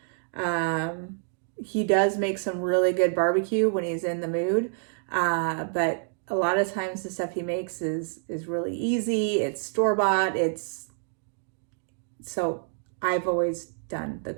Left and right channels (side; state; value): left; silent; digital silence